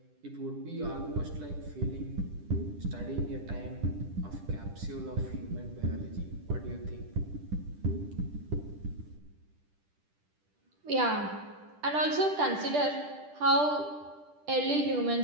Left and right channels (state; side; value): late; left; 10 ms